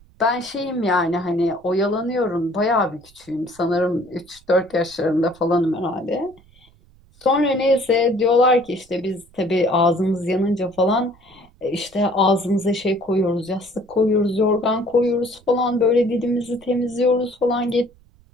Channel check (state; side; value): noise; right; rumble, 29 dB below the sound